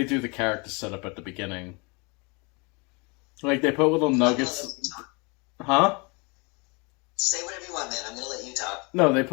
do the character setup at the beginning. Like, they put little nuggets... Huh? Say whatever you want, man. I'm going to let you talk. No, they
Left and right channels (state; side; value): quieter; right; 29.9 dB